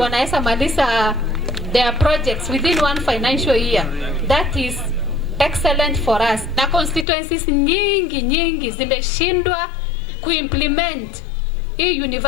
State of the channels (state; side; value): drops out; right; at 7.1 s